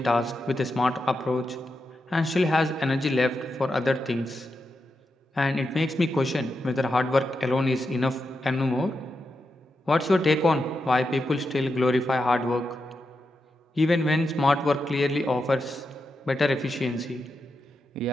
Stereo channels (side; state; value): both; normal; correlation 0.87